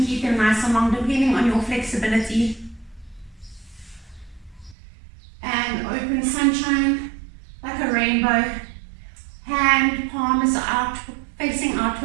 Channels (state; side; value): drops out; left; at 4.8 s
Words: keep them nice and long depending on your flexibility. And open sunshine like a rainbow. Hand palms out, facing